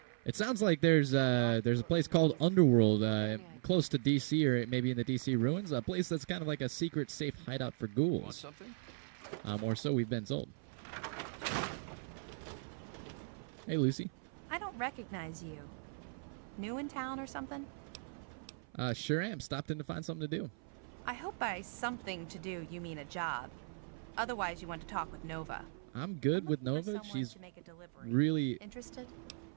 It sounds like there's a place called Underworld close to D.C. or maybe in the D.C. ruins. A place that's kind of like a secret, safe hideout for ghouls. Want something? Or so we've been told. Hey, Lucy. I don't recognize you. New in town or something? Sure am. Stopped in to find something to do. I hope by something to do you mean a job. Otherwise, you want to talk with Nova. I'm good with Nova. She's really interested.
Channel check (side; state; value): left; silent; 53 dB below the other